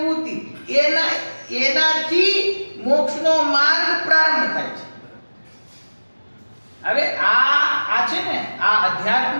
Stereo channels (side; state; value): both; inverted; correlation -1.00